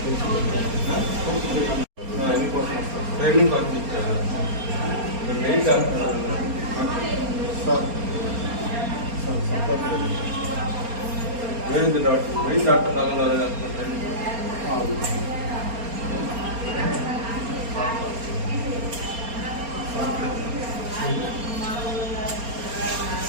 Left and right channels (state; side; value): late; left; 4.3 ms